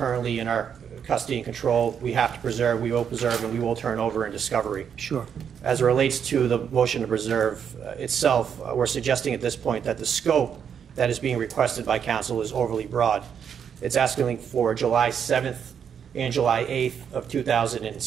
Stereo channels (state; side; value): quieter; left; 7.8 dB